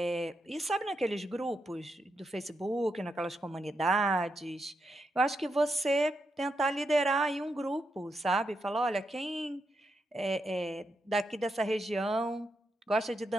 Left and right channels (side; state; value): both; normal; correlation 0.84